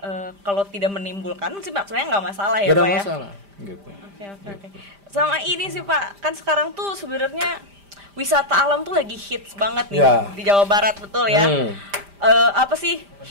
kalau tidak menimbulkan sih sebenarnya nggak masalah ya Pak ya? Nggak ada masalah, gitu. Oke. Sama ini sih Pak, kan sekarang tuh sebenarnya wisata alam tuh lagi hits banget nih di Jawa Barat, betul ya? Apa sih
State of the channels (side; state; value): left; late; 5.0 ms